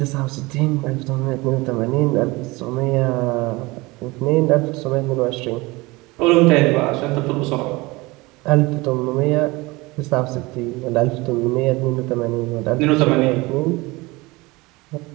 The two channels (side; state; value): left; quieter; 22.7 dB